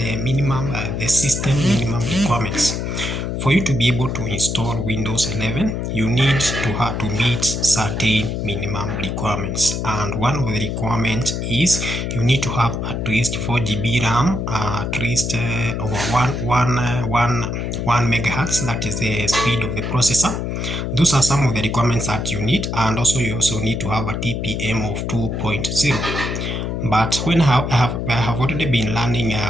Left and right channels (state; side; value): noise; left; hum, 3 dB below the sound